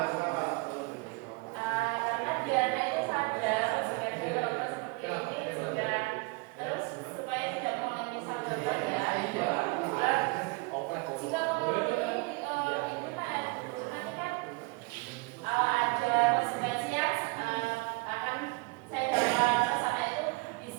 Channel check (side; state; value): left; quieter; 27.9 dB